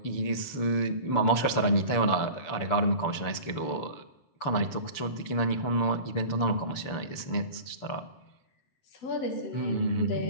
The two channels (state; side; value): late; right; 6.9 ms